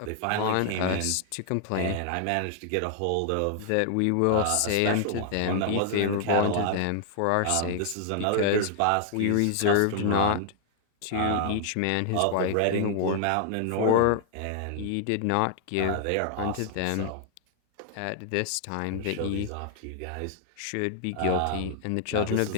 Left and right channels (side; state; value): both; different; correlation 0.00